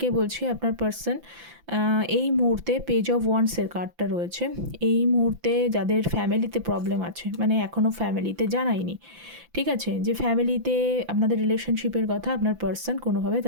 বলছি আপনার পার্সন এই মুহূর্তে পেজ অফ ওয়ান্ডসের কার্ডটা রয়েছে। এই মুহূর্তে যাদের ফ্যামিলিতে প্রবলেম আছে, মানে এখনও ফ্যামিলিতে জানায়নি, ঠিক আছে, যে ফ্যামিলিতে আপনাদের রিলেশনশিপের কথা আপনার পার্সন কোনোভাবে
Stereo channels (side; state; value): left; late; 5.9 ms